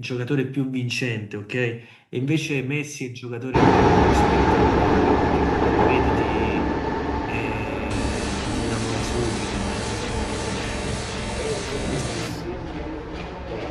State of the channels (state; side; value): identical; both; correlation 1.00